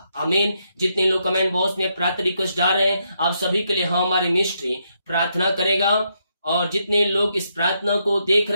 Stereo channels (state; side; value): inverted; both; correlation -0.78